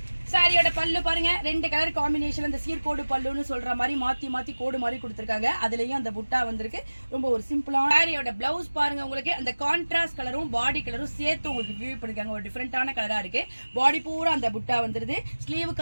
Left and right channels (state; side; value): inverted; both; correlation -1.00